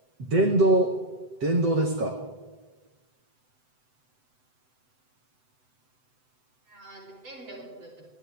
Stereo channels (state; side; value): late; left; 7.9 ms